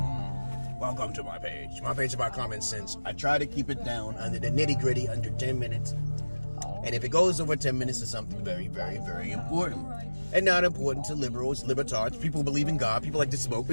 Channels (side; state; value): both; inverted; correlation -1.00